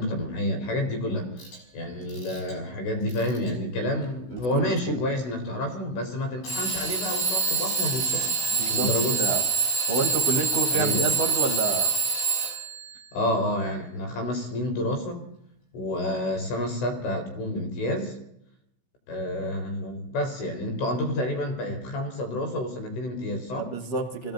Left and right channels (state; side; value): late; right; 16 ms